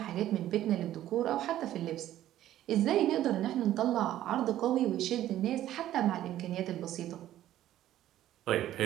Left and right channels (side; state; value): left; quieter; 13.0 dB